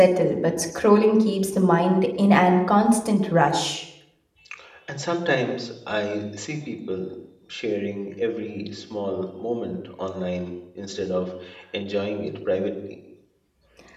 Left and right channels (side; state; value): both; identical; correlation 1.00